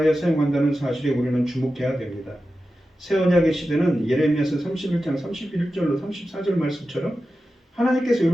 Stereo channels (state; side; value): normal; both; correlation 0.92